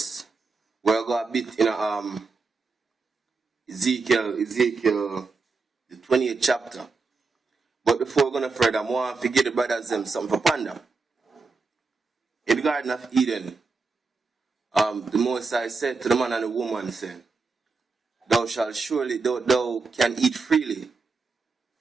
we're going a bit in Ezekiel, the 28th chapter. But before we're going to further, I want to give the brothers something for ponder. In the Garden of Eden, the Most High said to the man and the woman, saying, thou shalt surely, thou can eat freely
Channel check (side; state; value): left; quieter; 4.2 dB